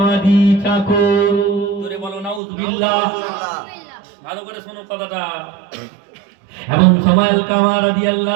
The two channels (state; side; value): drops out; left; at 2.4 s